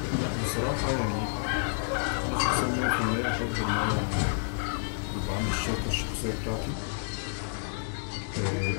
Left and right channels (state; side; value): silent; right; 58 dB below the other